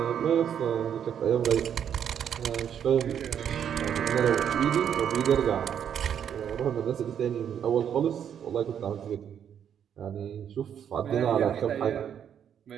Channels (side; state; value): left; quieter; 8.8 dB